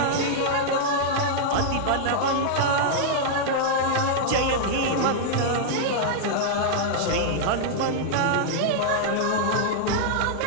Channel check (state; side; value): different; both; correlation -0.01